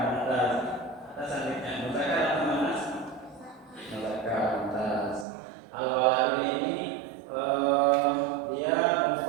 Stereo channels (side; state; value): left; drops out; at 5.2 s